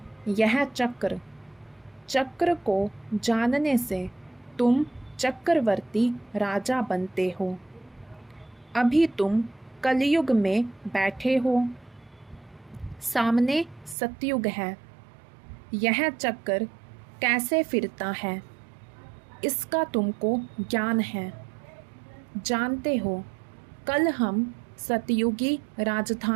यह चक्र। चक्र को जानने से तुम चक्रवर्ती राजा बनते हो। अभी तुम कलयुग में बैठे हो, सामने सतयुग है। यह चक्र कैसे फिरता है इसका तुमको ज्ञान है। जानते हो कल हम सतयुगी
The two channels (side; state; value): left; drops out; at 14.0 s